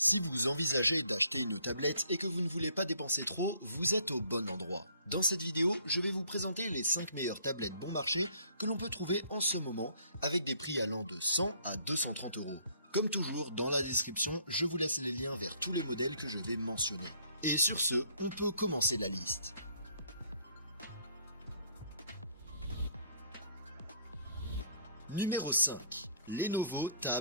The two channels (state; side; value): inverted; both; correlation -0.61